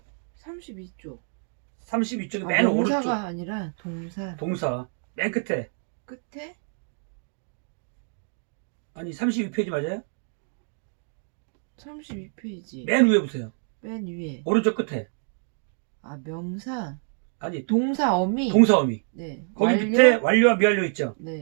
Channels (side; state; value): left; silent; 60 dB below the other